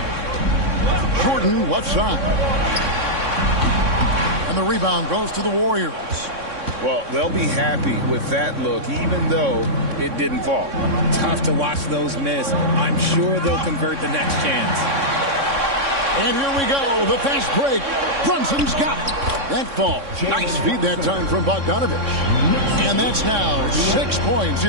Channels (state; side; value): late; left; 3.6 ms